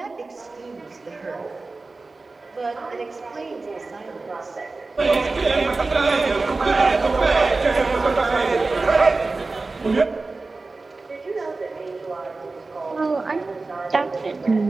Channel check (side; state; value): left; quieter; 3.6 dB